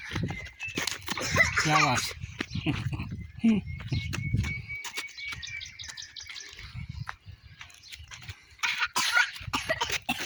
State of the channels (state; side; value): identical; both; correlation 1.00